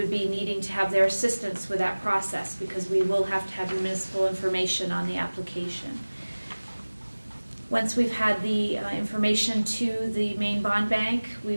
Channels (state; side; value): inverted; both; correlation -1.00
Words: be needing to have their assistance with that process, because we will have to have the municipal information on the application. Once we've had the information to the Maine Bond Bank, we